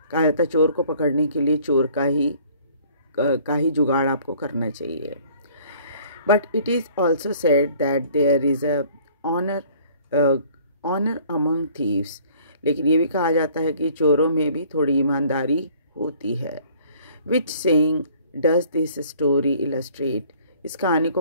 कहा जाता है चोर को पकड़ने के लिए चोर का ही जुगाड़ आपको करना चाहिए। But it is also said that there is a honour among thieves. लेकिन ये भी कहा जाता है कि चोरों में भी थोड़ी ईमानदारी होती है। Which saying does this story illustrate. इस कहानी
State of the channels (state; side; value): inverted; both; correlation -0.55